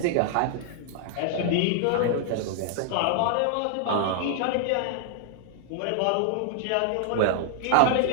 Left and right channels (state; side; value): different; both; correlation 0.00